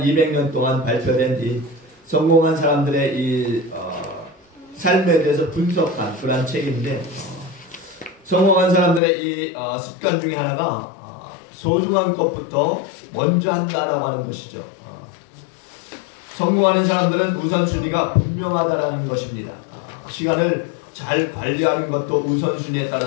200년 동안 발표된 이 성공한 사람들의 이 삶에 대해서 분석한 그런 책인데 성공한 사람들의 이 습관 중에 하나가 소중한 것부터 먼저 한다라고 하는 것이죠. 성공하는 사람들은 우선순위가 분명하다라는 것입니다. 시간을 잘 관리하는 것도 우선순위에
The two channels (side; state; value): right; drops out; at 9.0 s